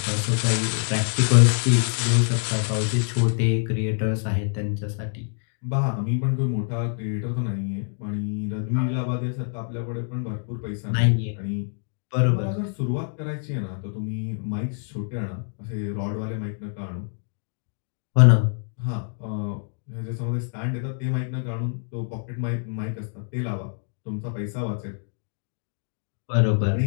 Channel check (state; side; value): silent; right; digital silence